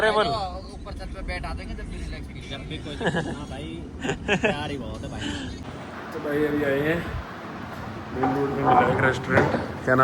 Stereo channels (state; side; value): identical; both; correlation 1.00